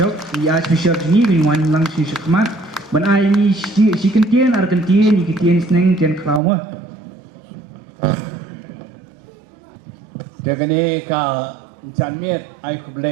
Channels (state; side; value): drops out; left; at 6.4 s